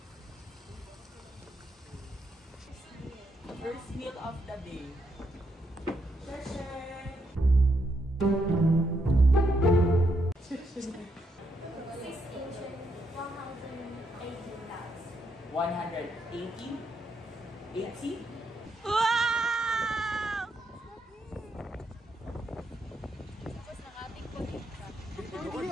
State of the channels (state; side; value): normal; both; correlation 0.79